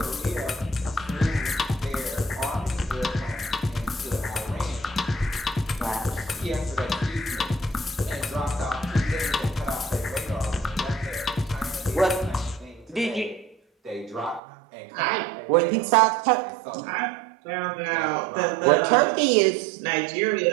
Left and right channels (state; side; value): drops out; left; at 14.4 s